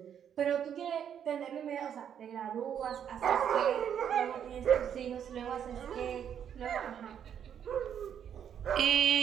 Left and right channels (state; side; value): quieter; left; 8.8 dB